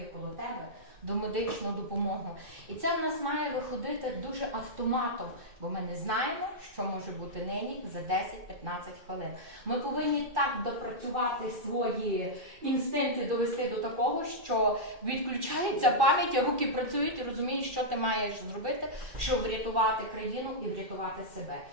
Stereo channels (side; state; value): left; late; 2.4 ms